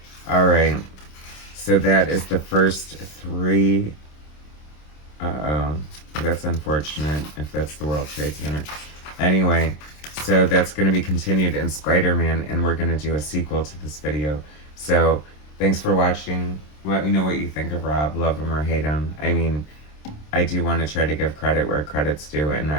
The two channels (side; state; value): right; late; 26 ms